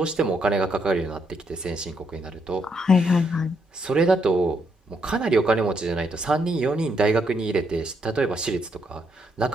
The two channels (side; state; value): both; normal; correlation 0.76